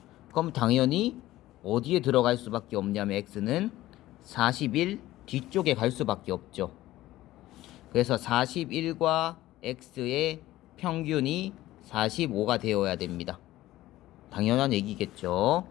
그럼 당연히 어디에 들어갈 수밖에 없냐면 x는 41 뒤쪽에 갈 수밖에 없죠. 그래서 41과 x의 평균이 45가 되어야 됩니다. 당연한 얘기겠죠.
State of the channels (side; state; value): right; quieter; 15.8 dB